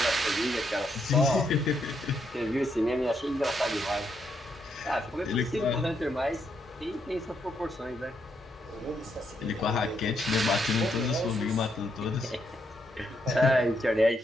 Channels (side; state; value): both; normal; correlation 0.78